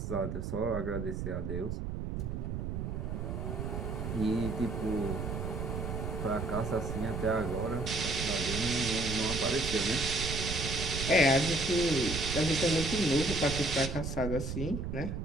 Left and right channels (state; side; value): noise; right; rumble, 3 dB below the sound